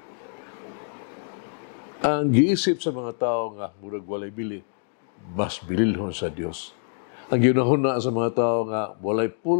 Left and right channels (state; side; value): silent; right; digital silence